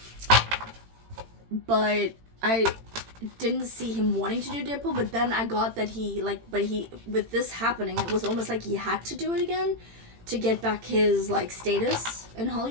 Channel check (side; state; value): left; late; 18 ms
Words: But I didn't see him wanting to do Deadpool, but then I got that he, like, with this happening, it was almost like he had to do it again to get back his, like, status in